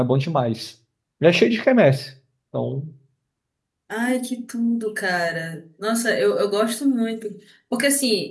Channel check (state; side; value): identical; both; correlation 1.00